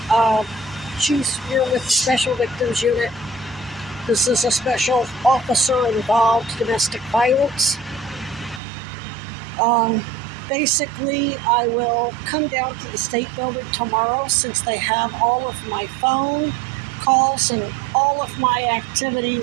she's here with the Special Victims Unit. This is a special officer involved domestic violence. Basically, I will come down to the state building tomorrow since they have all of my phone calls and all of my activity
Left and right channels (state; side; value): drops out; left; at 8.6 s